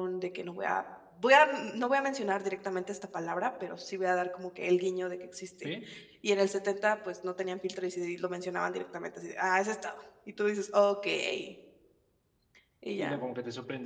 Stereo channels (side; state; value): both; identical; correlation 1.00